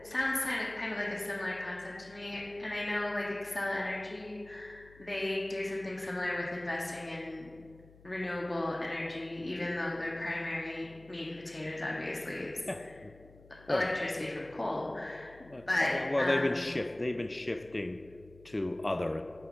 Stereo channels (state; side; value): noise; left; hum, 23 dB below the sound